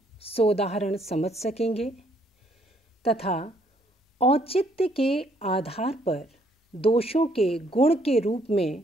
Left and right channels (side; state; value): both; normal; correlation 0.67